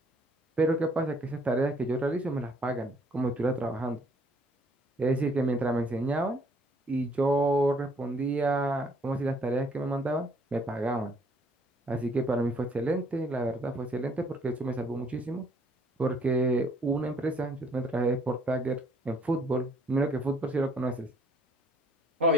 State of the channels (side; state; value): both; normal; correlation 0.62